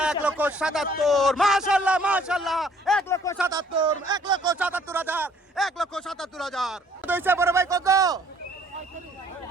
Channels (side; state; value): both; normal; correlation 0.60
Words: 1,77,000 মাশাআল্লাহ মাশাআল্লাহ 1,77,000 হইছে বড় ভাই কত